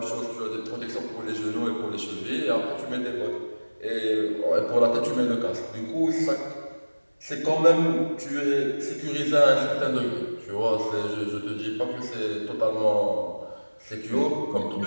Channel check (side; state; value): both; inverted; correlation -1.00